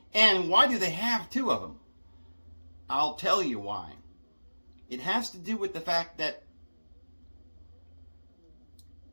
And why do they have two of them? I'll tell you why. It has to do with the fact that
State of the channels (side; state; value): both; inverted; correlation -1.00